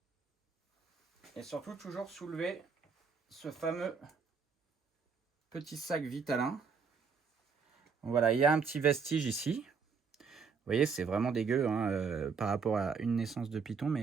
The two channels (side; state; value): left; quieter; 5.5 dB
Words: Et surtout, toujours soulever ce fameux petit sac Vitalin. Voilà, il y a un petit vestige ici. Vous voyez, c'est vraiment dégueu hein, par rapport à une naissance de python.